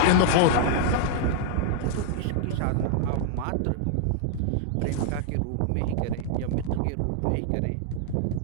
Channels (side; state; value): both; different; correlation -0.01